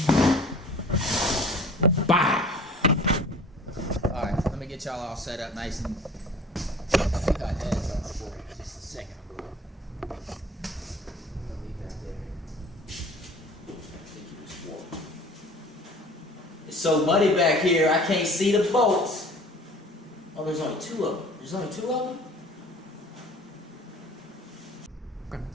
Bow! Alright, let me get y'all all set up nice and... I think I had some for just a second. It's so muddy back here, I can't see the boats. Oh, there's only two of them. There's only two of them? Okay.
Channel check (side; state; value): both; normal; correlation 0.47